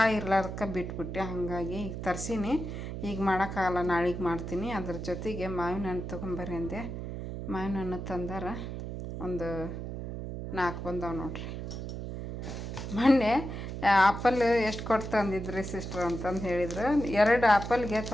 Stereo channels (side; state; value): right; noise; hum, 6 dB below the sound